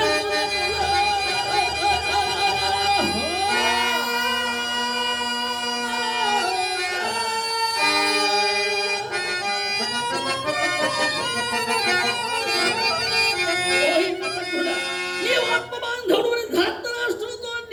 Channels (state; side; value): identical; both; correlation 1.00